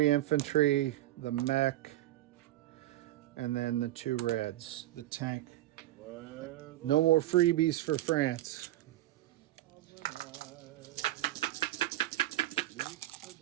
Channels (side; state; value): left; quieter; 15.1 dB